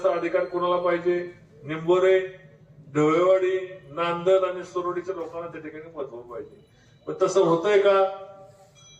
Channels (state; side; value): identical; both; correlation 1.00